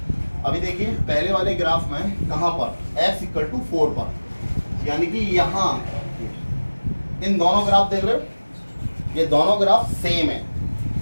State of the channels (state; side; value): inverted; both; correlation -1.00